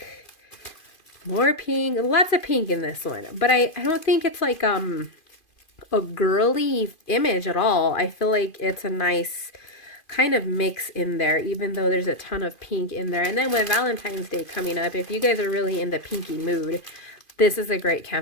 More pink. Lots of pink in this one. But I don't think it's like a girly image at all. I feel like it's a nice kind of mix in there, even though there's a ton of pink in there. And then with Valentine's Day coming up, if you guys are really in the pinky mood, this is a great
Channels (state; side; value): late; right; 2.4 ms